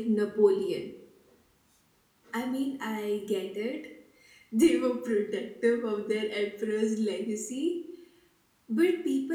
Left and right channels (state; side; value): identical; both; correlation 1.00